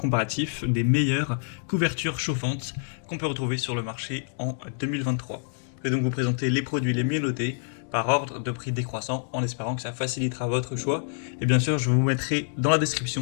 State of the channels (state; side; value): silent; right; digital silence